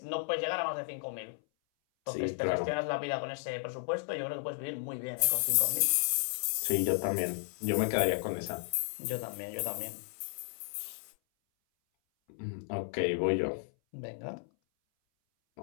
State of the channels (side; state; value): right; silent; 56 dB below the other